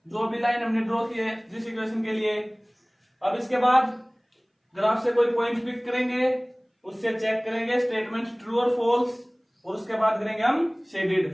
जो भी लाइन हमने ड्रॉ की है जिस इक्वेशन के लिए। अब इसके बाद ग्राफ से कोई पॉइंट पिक करेंगे, उससे चेक करेंगे स्टेटमेंट ट्रू और फॉल्स, और उसके बाद करेंगे हम शेडेड।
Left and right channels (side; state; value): both; identical; correlation 1.00